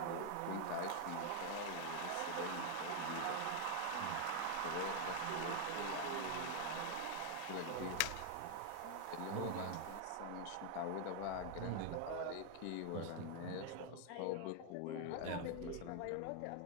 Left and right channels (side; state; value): both; different; correlation 0.00